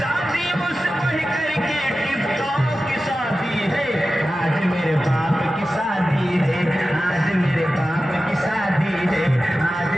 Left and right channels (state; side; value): normal; both; correlation 0.94